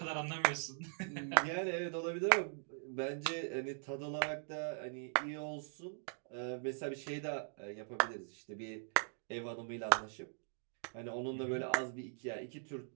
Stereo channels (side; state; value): left; silent; digital silence